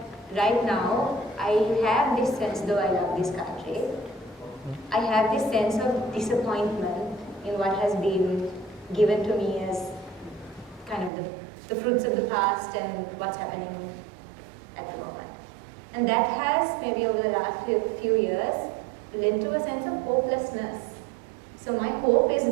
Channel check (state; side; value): drops out; left; at 11.1 s